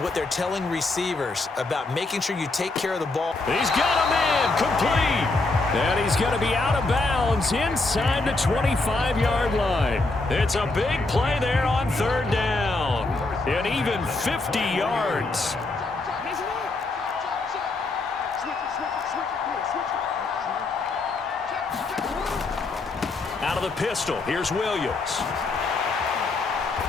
what they're telling receivers about making sure you take care of the ball. He's got a man, complete. And he's going to be out of bounds inside the 25-yard line. It's a big play there on 3rd down. And even 50 yards. Out of the pistol, here's Williams.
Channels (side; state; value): right; quieter; 3.4 dB